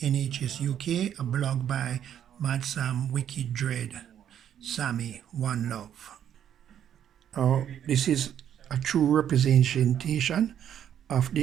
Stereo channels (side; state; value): left; quieter; 9.7 dB